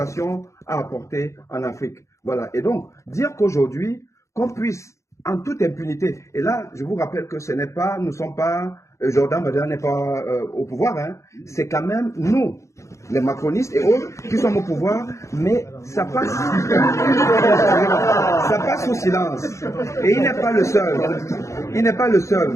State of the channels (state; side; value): late; right; 0.14 ms